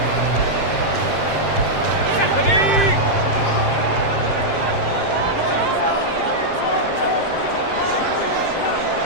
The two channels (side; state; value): right; late; 7.6 ms